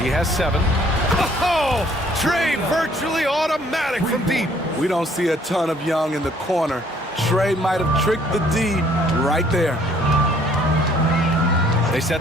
He has 7. Oh! Trey virtually automatic from deep. We don't see a ton of Young in the corner. Trey might have tricked the D right there. They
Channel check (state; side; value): normal; both; correlation 0.61